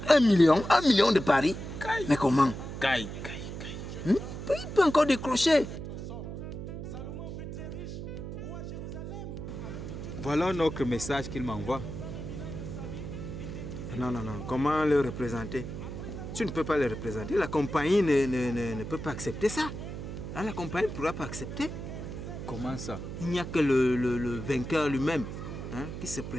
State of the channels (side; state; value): right; noise; hum, 8 dB below the sound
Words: 1 million de paris. Mais comment? Il peut encore décrocher. Voilà notre message qu'il m'envoie. Non. Comment le représenter? Tu ne peux pas le représenter. La compagnie ne peut pas accepter ça. Là, la compagnie ne pourra pas accepter. Comment ça? Il n'y a que le vainqueur lui-même, hein, qui se